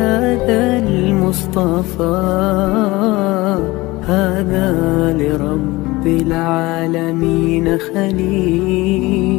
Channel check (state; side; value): quieter; right; 20.9 dB